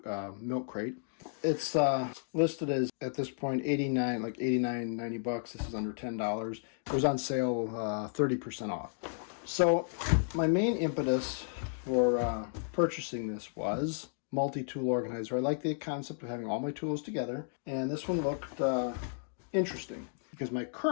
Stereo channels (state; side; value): silent; right; digital silence